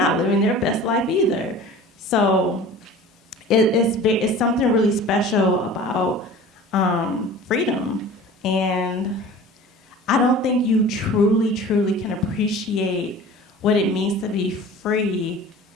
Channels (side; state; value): both; normal; correlation 0.41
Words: living their best life either. So it's something really special about freedom. And I don't think you truly, truly can appreciate what it means to be free.